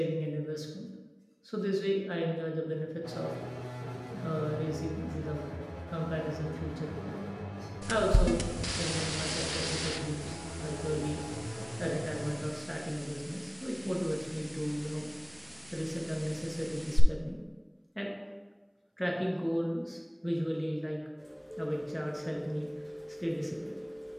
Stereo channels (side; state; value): both; identical; correlation 1.00